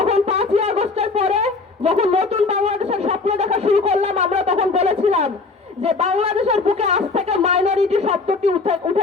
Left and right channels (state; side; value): quieter; right; 3.9 dB